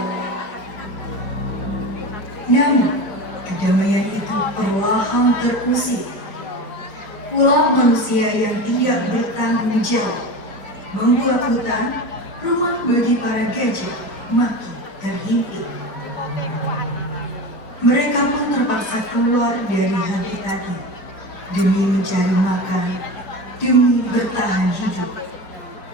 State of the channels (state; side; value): late; right; 4.4 ms